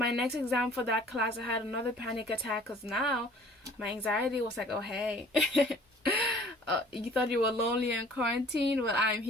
next exam for that class, I had another panic attack, because now my anxiety was like, oh hey, you thought you were lonely in quarantine? Well, I'm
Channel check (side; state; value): both; normal; correlation 0.51